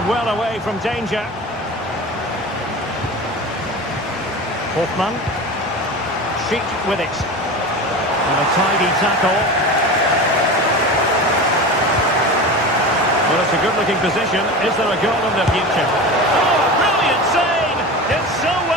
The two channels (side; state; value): both; normal; correlation 0.29